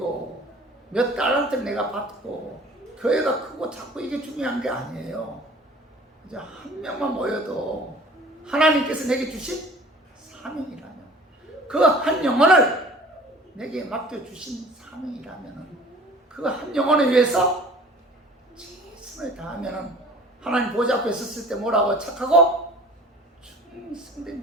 몇 달란트를 내가 받고 교회가 크고 작고 이게 중요한 게 아니에요. 이제 한 명만 모여도 하나님께서 내게 주신 사명이라면 그 한 영혼을 내게 맡겨주신 사명이라면 그 한 영혼을 위해서 최선을 다하면 하나님 보좌 앞에 섰을 때 뭐라고 착하고 충성된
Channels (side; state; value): both; normal; correlation 0.47